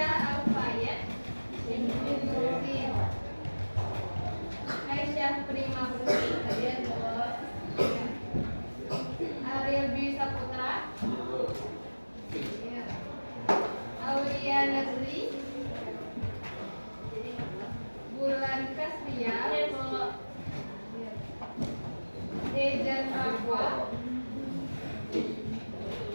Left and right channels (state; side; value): inverted; both; correlation -1.00